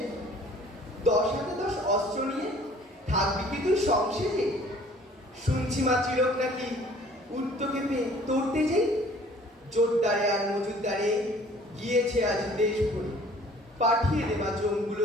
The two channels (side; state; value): both; normal; correlation 0.53